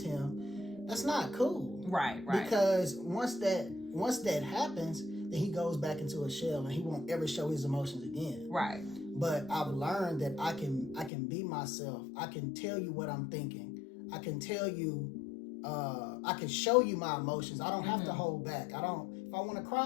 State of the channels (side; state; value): right; drops out; at 11.1 s